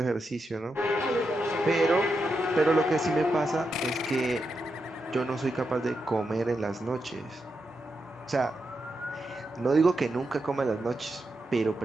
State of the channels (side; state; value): both; normal; correlation 0.86